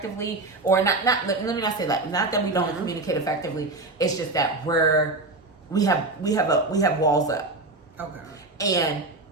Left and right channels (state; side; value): quieter; left; 3.1 dB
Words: Or not let me not say that. Not that we don't communicate effectively. It's just that we have walls up. Okay. And